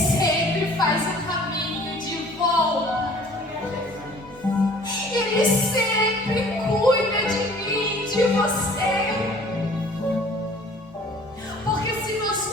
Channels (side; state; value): both; normal; correlation 0.51